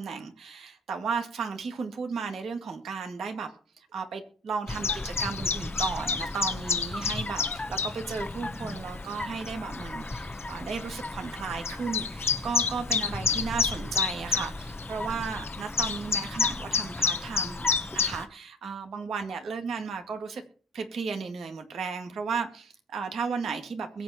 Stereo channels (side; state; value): both; normal; correlation 0.35